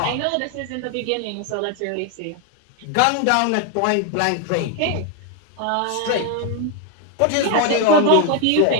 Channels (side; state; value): both; different; correlation 0.01